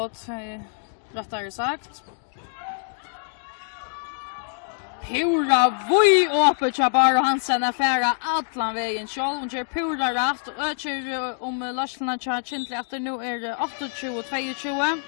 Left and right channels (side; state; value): right; silent; digital silence